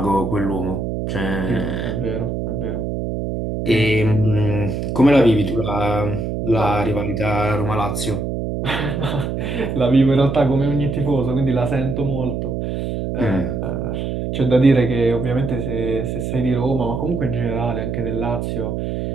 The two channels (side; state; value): right; noise; hum, 3 dB below the sound